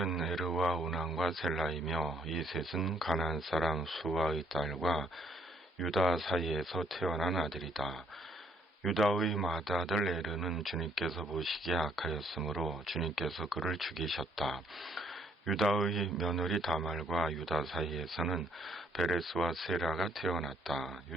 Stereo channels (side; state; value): both; normal; correlation 0.68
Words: 에르와 오난과 셀라이며 이 셋은 가나안 사람 수아의 딸과 유다 사이에서 태어난 아들이다. 유다의 맏아들 에르는 주님께서 보시기에 악하였으므로 주님께서 그를 죽이셨다. 유다의 며느리 다말과 유다 사이에서는 베레스와 세라가 태어났다.